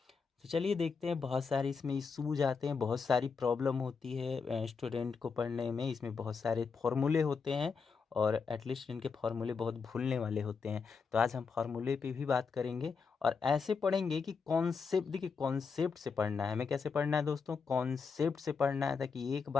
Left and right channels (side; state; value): right; quieter; 5.4 dB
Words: तो चलिए देखते हैं, बहुत सारे इसमें इशूज आते हैं, बहुत सारी प्रॉब्लम होती है स्टूडेंट को पढ़ने में। इसमें बहुत सारे फॉर्मूले होते हैं और एटलीस्ट इनके फॉर्मूले बहुत भूलने वाले होते हैं। तो आज हम फॉर्मूले पे भी बात करेंगे और ऐसे पढ़ेंगे कि कॉन्सेप्ट, देखिए कॉन्सेप्ट से पढ़ना है। हमें कैसे पढ़ना है दोस्तों? कॉन्सेप्ट से पढ़ना है, ताकि एक